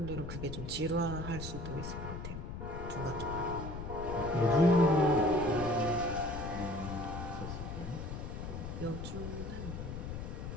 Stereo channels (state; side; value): noise; left; rumble, 7 dB below the sound